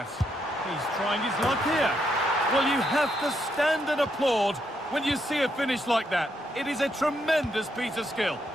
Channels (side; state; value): both; normal; correlation 0.77